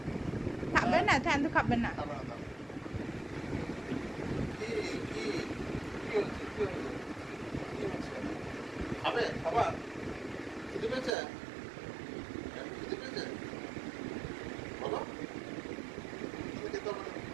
খাবে না, ঠান্ডু খাবে না। খাবে না তো। কি কি কি হচ্ছে? কি হচ্ছে? কি হচ্ছে? খাবে? খাবার? খিদে পেয়েছে? খিদে পেয়েছে? বলো। খিদে খেতে হবে না।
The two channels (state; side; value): drops out; left; at 11.1 s